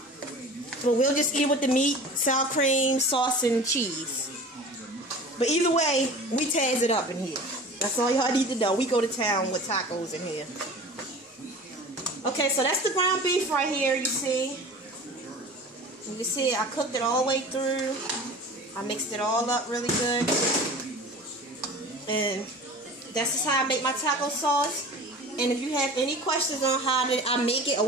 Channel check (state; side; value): normal; both; correlation 0.39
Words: But we'll just eat it with the meat, sour cream, sauce, and cheese. But either way, we taz it up in here. That's all y'all need to know. We go to town with tacos in here. Okay, so that's the ground beef right here, you see. You can see I cooked it all the way through. I mixed it all up really good. And that's just how I make my taco sauce. And if you have any questions on how did I make it or